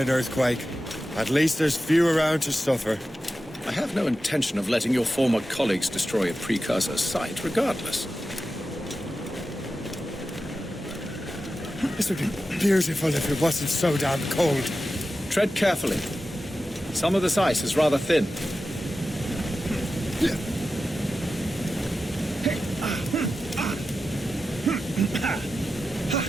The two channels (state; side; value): normal; both; correlation 0.92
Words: earthquake, at least there's few around to suffer. I have no intention of letting your former colleagues destroy a precursor site, regardless. This would be beautiful if it wasn't so damn cold. Tread carefully. Some of this ice is rather thin.